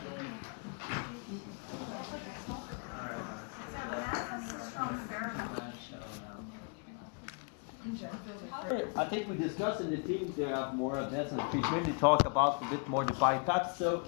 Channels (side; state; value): right; quieter; 36.2 dB